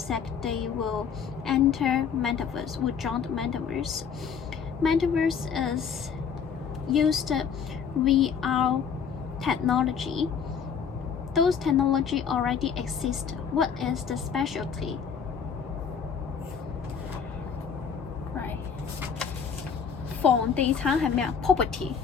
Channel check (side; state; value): right; quieter; 6.8 dB